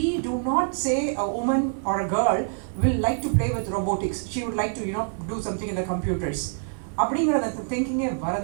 do not say a woman or a girl will like to play with robotics. She would like to do something in the computers. அப்படிங்கிற அந்த திங்கிங்கே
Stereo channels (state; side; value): silent; left; 61 dB below the other